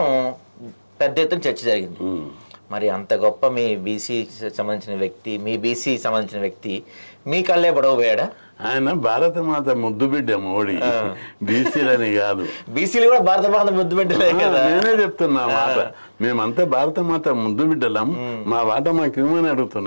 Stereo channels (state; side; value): inverted; both; correlation -1.00